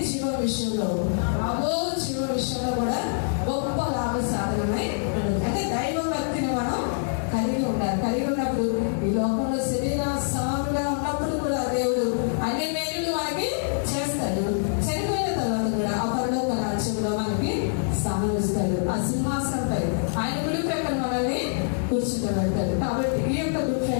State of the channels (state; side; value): silent; right; digital silence